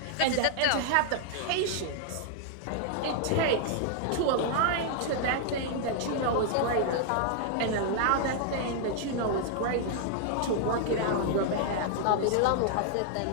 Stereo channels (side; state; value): both; different; correlation -0.01